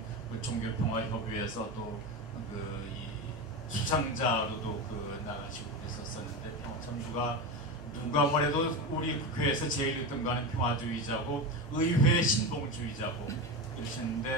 그 종교평화협의회에서 또 그 수상자로도 그 나가시고 그래서 전부가 누가 뭐래도 우리 국회에서 제일 유등가는 평화주의자고 의회 신봉주의자고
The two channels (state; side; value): normal; both; correlation 0.20